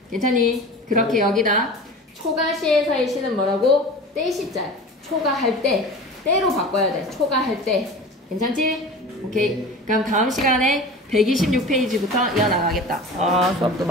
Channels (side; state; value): both; normal; correlation 0.36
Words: 괜찮니? 그렇게 여기다. 초가시에서의 시는 뭐라고? 때시자. 초가할 때. 때로 바꿔야 돼. 초가할 때. 괜찮지? 오케이. 그럼 다음 시간에 126페이지부터 이어나가겠다. 수업도